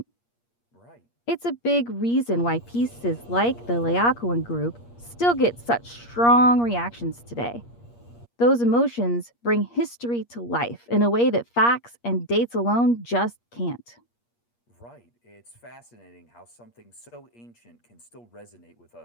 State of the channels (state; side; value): late; right; 8.5 ms